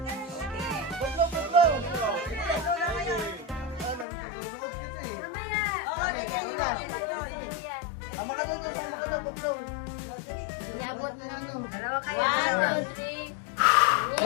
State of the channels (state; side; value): drops out; right; at 4.0 s